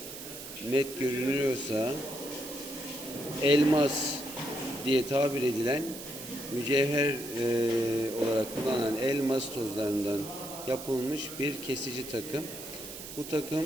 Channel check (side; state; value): right; noise; hiss, 11 dB below the sound